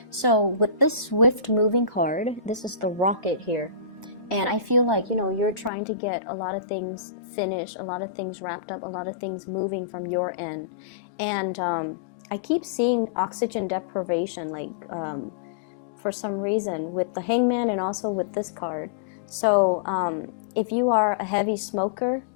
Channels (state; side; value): drops out; right; at 5.7 s